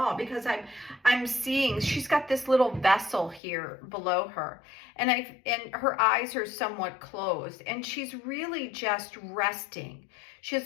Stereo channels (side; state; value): right; drops out; at 3.4 s